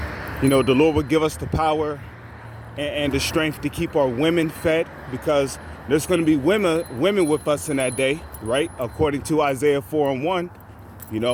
The Lord will give us the power and the strength to keep our women fed, because there's going to be women with us in that day, right? According to Isaiah 4:1,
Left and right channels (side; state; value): both; identical; correlation 1.00